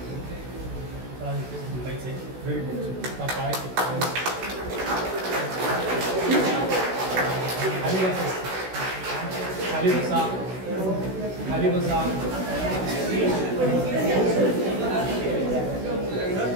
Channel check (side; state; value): left; late; 16 ms